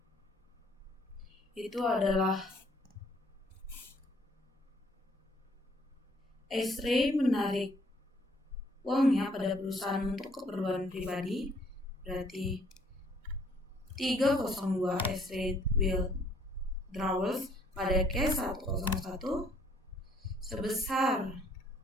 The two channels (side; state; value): both; normal; correlation 0.63